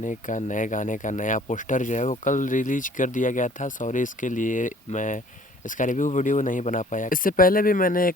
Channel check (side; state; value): both; normal; correlation 0.54